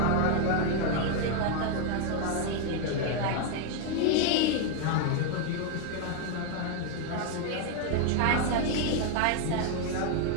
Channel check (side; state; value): both; different; correlation 0.00